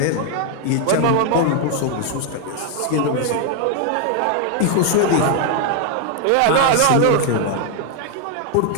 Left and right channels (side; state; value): both; different; correlation 0.00